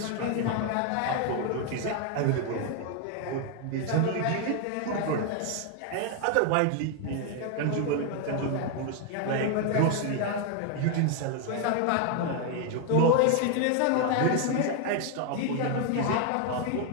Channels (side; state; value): both; different; correlation 0.01